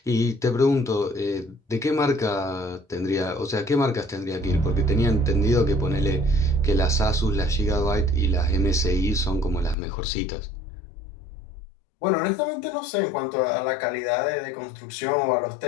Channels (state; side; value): drops out; right; at 9.8 s